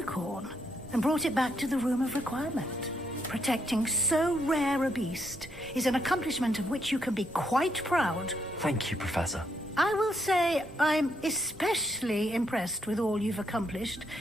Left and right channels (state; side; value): normal; both; correlation 0.76